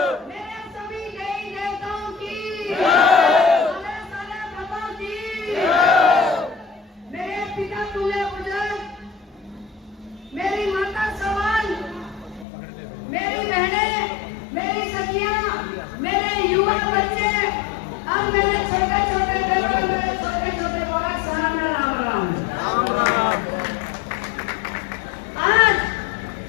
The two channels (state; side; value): drops out; right; at 12.5 s